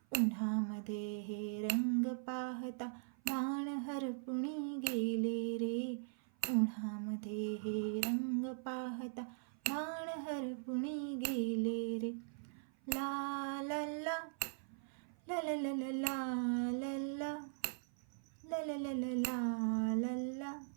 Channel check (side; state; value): left; silent; 51 dB below the other